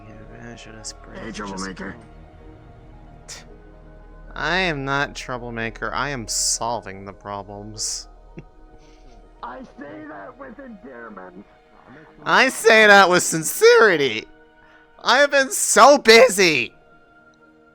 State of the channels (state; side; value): identical; both; correlation 1.00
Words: advantage of this bridge. Hey, Troublemaker. I am not troublemaker. I am solving the problems. I say that with endearment. I say that with sincerity. I have been so busy.